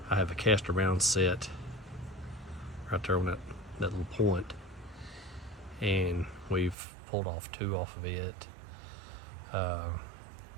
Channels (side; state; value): left; drops out; at 6.8 s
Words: I have a Castor Mound set right there on that little point, and we've pulled off 2 off of it, I